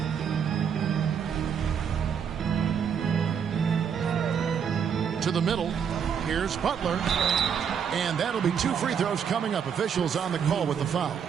To the middle. Here's Butler. And that'll be 2 free throws coming up. Officials on the call with the foul.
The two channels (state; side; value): quieter; left; 7.5 dB